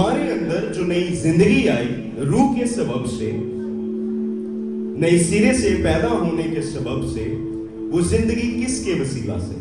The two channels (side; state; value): both; identical; correlation 1.00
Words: اندر جو نئی زندگی آئی روح کے سبب سے، نئی سرے سے پیدا ہونے کے سبب سے، وہ زندگی کس کے وسیلہ سے؟